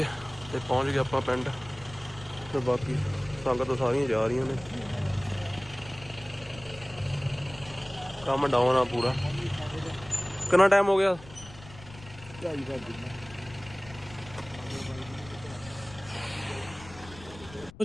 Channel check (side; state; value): left; noise; rumble, 18 dB below the sound